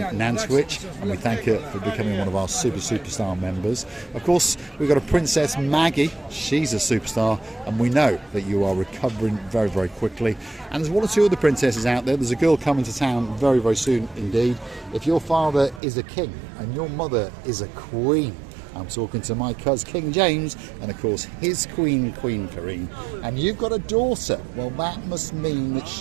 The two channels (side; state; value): left; drops out; at 15.8 s